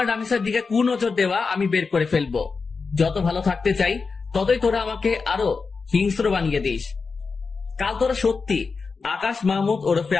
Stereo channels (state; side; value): quieter; right; 4.7 dB